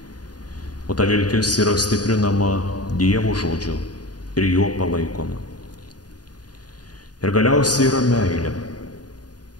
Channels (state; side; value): late; right; 0.69 ms